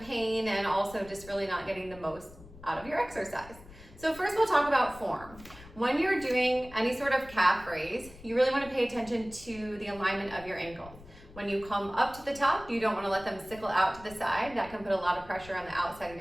and also just really not getting the most out of your exercise. So first we'll talk about form. When you're doing any sort of calf raise, you really want to pay attention to the alignment of your ankles. When you come up to the top, you don't want to let them sickle out to the side. That can put a lot of pressure on the outside of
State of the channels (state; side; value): noise; left; rumble, 19 dB below the sound